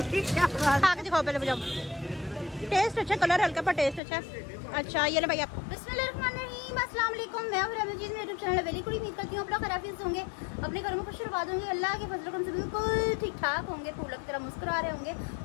की क्या बात? खा के दिखाओ पहले मुझे। टेस्ट अच्छा, कलर हल्का पर टेस्ट अच्छा। अच्छा ये ले भाई आप। बिस्मिल्लाहिर्रहमानिर्रहीम, अस्सलाम वालेकुम। मैं हूं रमजीत, मेरे यूट्यूब चैनल वेरी गुड। उम्मीद करती हूं आप लोग खैरियत से होंगे, अपने घरों में खुश आबाद होंगे, अल्लाह के फजल करम से बिल्कुल ठीक ठाक होंगे, फूलों की तरह मुस्कुरा रहे होंगे।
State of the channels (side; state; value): right; drops out; at 4.0 s